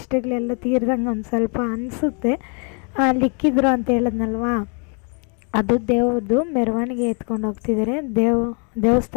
ತೀರ್ದಂಗೆ ಒಂದು ಸ್ವಲ್ಪ ಅನಿಸುತ್ತೆ. ಲಿಕ್ಕಿದ್ರು ಅಂತ ಹೇಳಿದ್ನಲ್ವಾ, ಅದು ದೇವ್ರದ್ದು ಮೆರವಣಿಗೆ ಎತ್ಕೊಂಡು ಹೋಗ್ತಿದ್ದಾರೆ.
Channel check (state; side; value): quieter; right; 37.3 dB